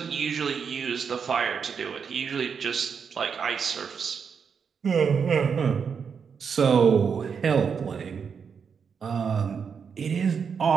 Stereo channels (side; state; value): left; quieter; 6.4 dB